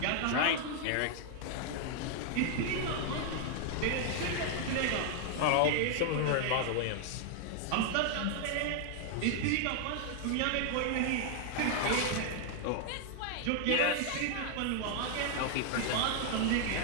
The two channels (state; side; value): different; both; correlation 0.00